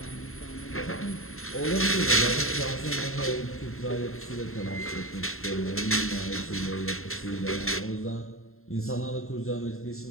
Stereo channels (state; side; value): late; right; 0.62 ms